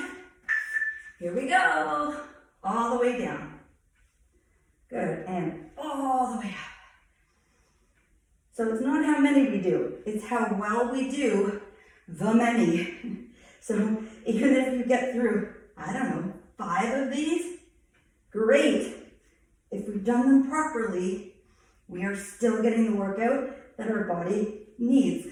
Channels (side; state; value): both; identical; correlation 1.00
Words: Here we go, all the way down. Good, and all the way up. So it's not how many we do, it's how well we do the many. So even if you get through, I don't know, 5 of these, great. If we've done them properly, we are still getting the workout that our body needs